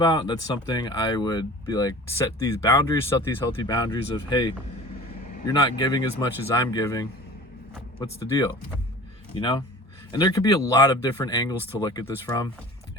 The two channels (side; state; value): both; normal; correlation 0.41